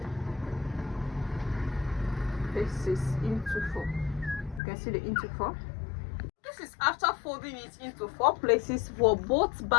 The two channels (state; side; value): drops out; right; at 4.6 s